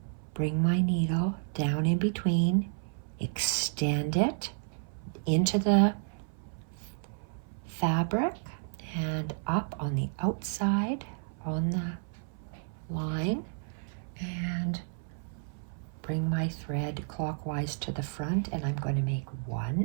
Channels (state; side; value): silent; left; 57 dB below the other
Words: bring my needle down in between, extend it into the fabric and up on the outside on the line, and bring my thread clockwise to the front, and I'm going to make